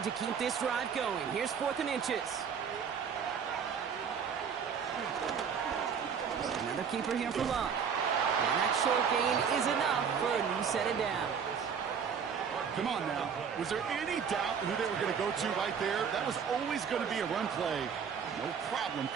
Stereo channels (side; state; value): left; quieter; 6.9 dB